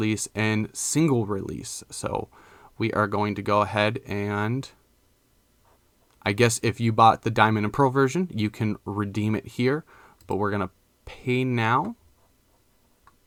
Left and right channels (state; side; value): identical; both; correlation 1.00